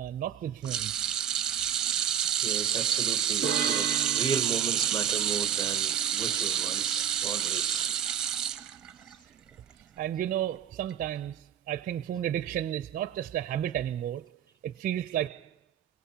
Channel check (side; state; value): left; quieter; 9.1 dB